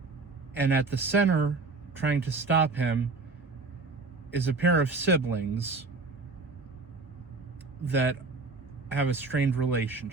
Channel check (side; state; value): left; quieter; 3.9 dB